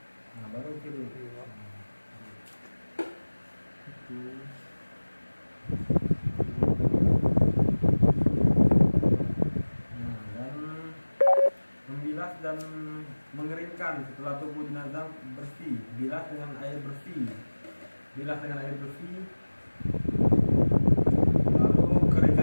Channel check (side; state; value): both; inverted; correlation -1.00